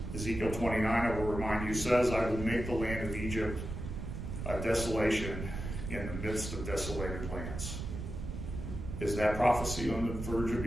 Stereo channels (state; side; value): noise; right; rumble, 6 dB below the sound